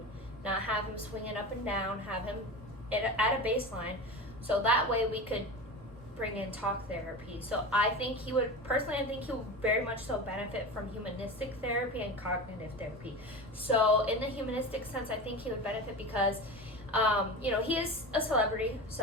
not have him swinging up and down, have him at a baseline. So that way we could bring in talk therapy. So I think he would very much so benefit from humanistic therapy and cognitive therapy. So in the humanistic sense, I think he would benefit because he is a celebrity,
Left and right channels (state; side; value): normal; both; correlation 0.28